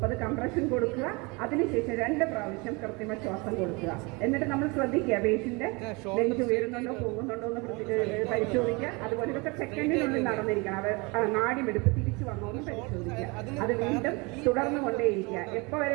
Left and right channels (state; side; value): quieter; left; 27.7 dB